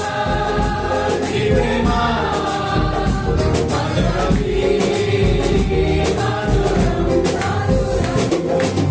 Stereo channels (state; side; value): identical; both; correlation 1.00